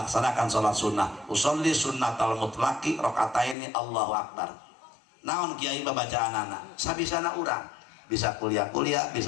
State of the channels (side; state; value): right; drops out; at 3.6 s